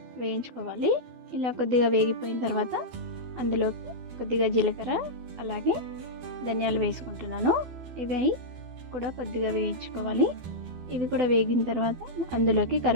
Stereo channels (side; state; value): left; late; 12 ms